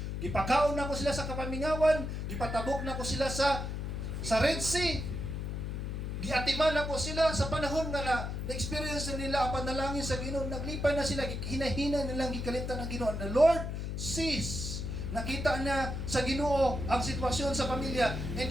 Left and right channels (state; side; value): noise; left; hum, 4 dB below the sound